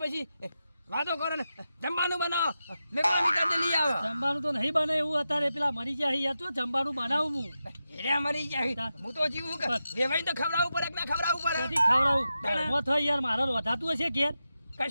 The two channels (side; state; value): both; inverted; correlation -0.90